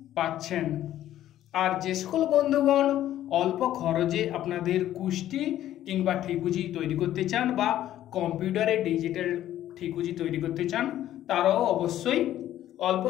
পাচ্ছেন। আর যে সকল বন্ধুগণ অল্প খরচে আপনাদের কুষ্টি কিংবা ঠিকুজি তৈরি করতে চান বা কম্পিউটারে ডিজিটাল ঠিকুজি তৈরি করতে চান, তারাও অবশ্যই অল্প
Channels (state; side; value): quieter; right; 12.6 dB